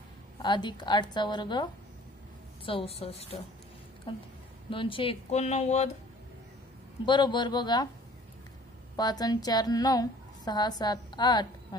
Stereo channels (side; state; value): both; normal; correlation 0.52